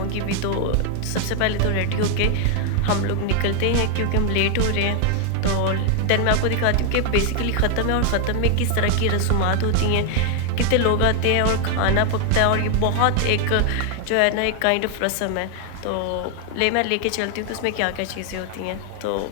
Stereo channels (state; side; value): different; both; correlation 0.00